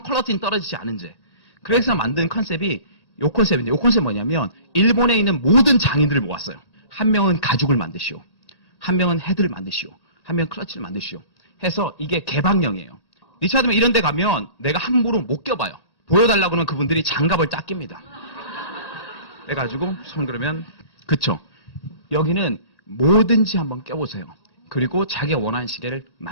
퀄리티는 떨어지지 않은 채. 그래서 만든 컨셉이 요 컨셉인데, 요 컨셉 뭐냐면 일본에 있는 모든 장인들을 모았어요. 한 명은 가죽을 만드시오, 한 명은 헤드를 만드시오, 한 명은 클러치를 만드시오 해서 이게 개방형이에요. 리차드맨 이런 데 가면 내가 함부로 못 껴봐요. 보여달라고 하면 그분들이 장갑을 딱 낍니다. 해가지고 손 그러면 그쵸. 여기는 뭐든지 한번 껴보세요. 그리고 자기가 원하는 시계를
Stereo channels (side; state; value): right; late; 1.8 ms